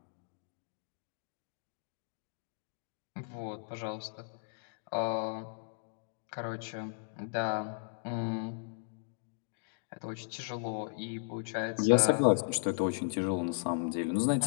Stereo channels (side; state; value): right; silent; digital silence